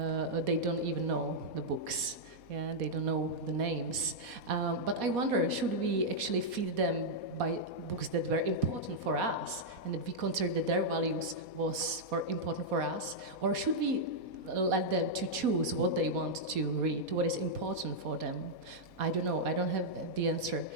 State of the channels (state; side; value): late; left; 4.2 ms